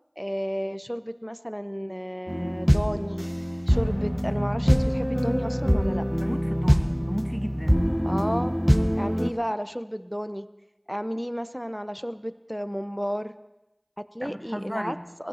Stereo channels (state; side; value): identical; both; correlation 1.00